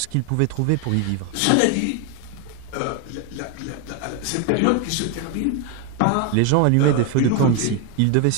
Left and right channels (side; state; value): both; different; correlation 0.01